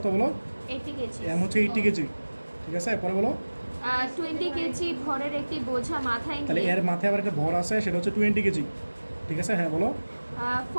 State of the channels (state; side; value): inverted; both; correlation -1.00